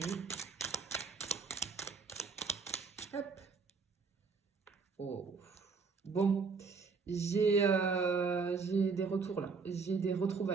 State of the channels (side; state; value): left; quieter; 4.9 dB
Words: Hop. Oh. Bon, j'ai des retours là, j'ai des